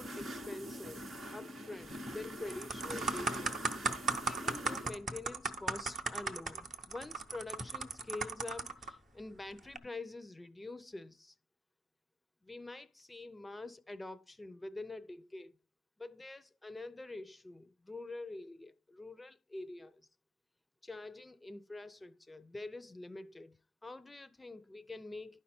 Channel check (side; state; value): both; normal; correlation 0.67